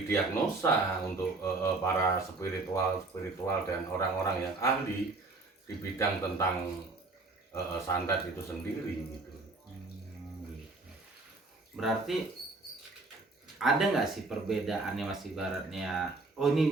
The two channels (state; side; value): quieter; left; 3.4 dB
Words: untuk para spiritual dan orang-orang yang ahli di bidang tentang santet itu sendiri gitu. Berarti ada nggak sih perbedaannya mas ibaratnya? Oh